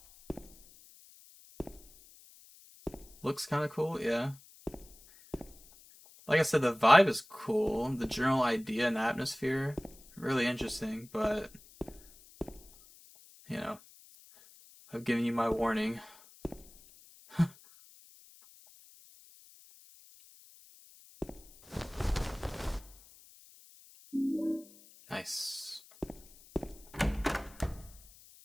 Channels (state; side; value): noise; left; hiss, 23 dB below the sound